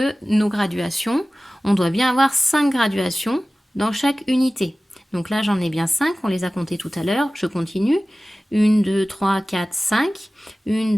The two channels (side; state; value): both; normal; correlation 0.97